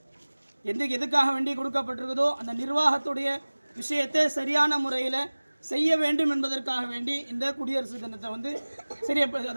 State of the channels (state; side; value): inverted; both; correlation -1.00